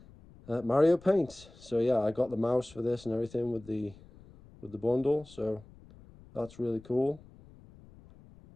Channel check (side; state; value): left; noise; rumble, 23 dB below the sound